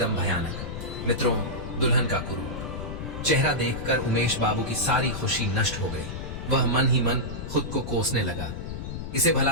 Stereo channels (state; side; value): noise; left; rumble, 7 dB below the sound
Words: भयानक। मित्रों, दुल्हन का कुरूप चेहरा देखकर उमेश बाबू की सारी खुशी नष्ट हो गई। वह मन ही मन खुद को कोसने लगा। इसे